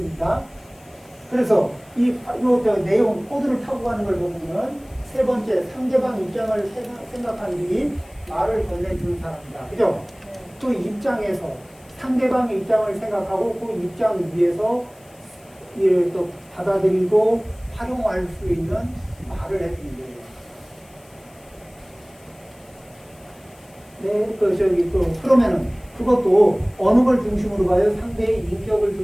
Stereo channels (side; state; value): left; noise; hiss, 28 dB below the sound